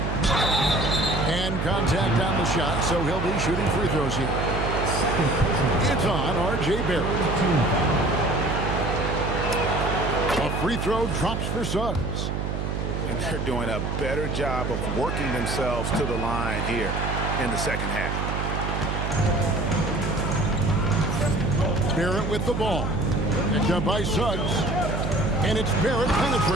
And contact on the shot, so he'll be shooting free throws here. It's on R.J. Barrett. A free throw drops for Suggs. And they're doing a better job of working themselves to the line here in the second half. Barrett with the ball. Picked up by Suggs. And it's Barrett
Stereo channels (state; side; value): noise; right; hum, 2 dB below the sound